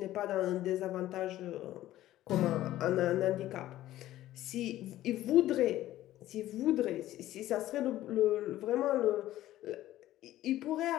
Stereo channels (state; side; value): quieter; right; 14.4 dB